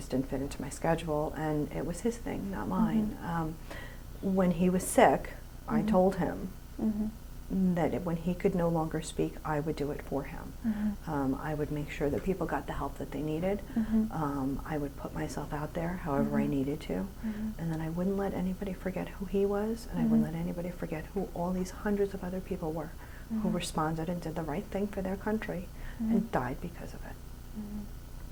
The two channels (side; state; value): both; identical; correlation 1.00